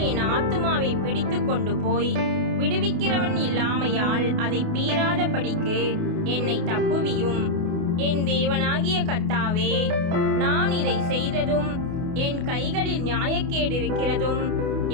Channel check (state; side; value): late; left; 28 ms